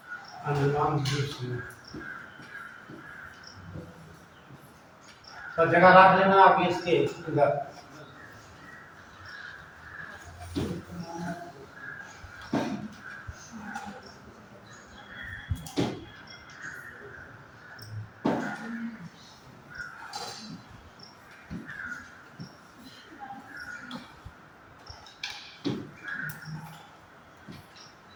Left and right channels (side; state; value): both; identical; correlation 1.00